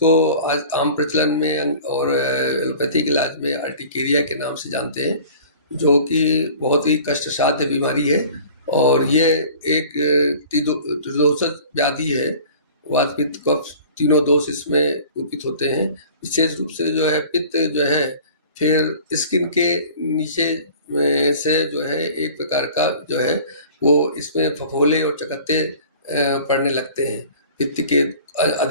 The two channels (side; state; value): both; inverted; correlation -0.45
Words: आज आम प्रचलन में और एलोपैथिक इलाज में अर्टिकेरिया के नाम से जानते हैं, जो कि बहुत ही कष्टसाध्य बीमारी है और ये एक त्रिदोषज व्याधि है। वात पित्त कफ तीनों दोष इसमें कुपित होते हैं। विशेष रूप से जो है पित्त जो है फिर स्किन के नीचे से जो है एक प्रकार का जो है वो इसमें फफोले और चकत्ते पड़ने लगते हैं पित्त के